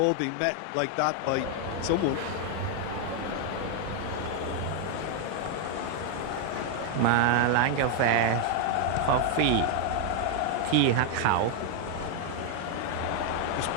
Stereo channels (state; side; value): different; both; correlation 0.00